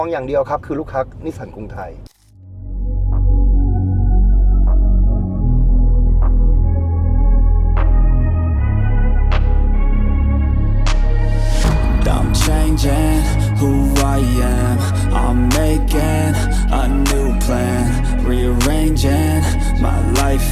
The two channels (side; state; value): both; identical; correlation 1.00